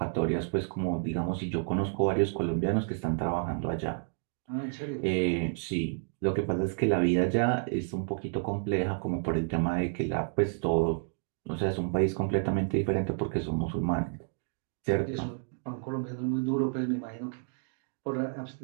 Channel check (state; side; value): silent; left; 58 dB below the other